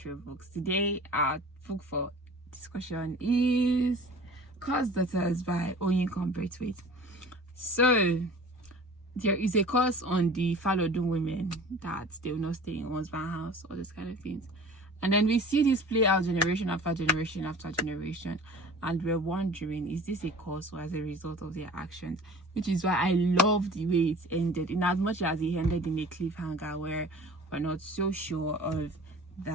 Books. Today our book for discussion is Cursed Daughters by Oyinkan Braithwaite. So there is a curse on the Falodun women that they will not stay in husband's house, all those kind of things. And then we see this play out generation after generation after generation, and we're wondering, is this a cause or as a result of their actions? Which is why I love the way it ended, in as much as it ended in a cliffhanger where we're not so sure of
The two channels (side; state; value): both; normal; correlation 0.42